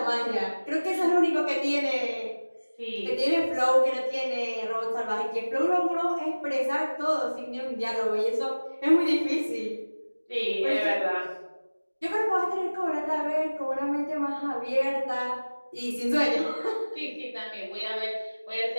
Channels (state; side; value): inverted; both; correlation -1.00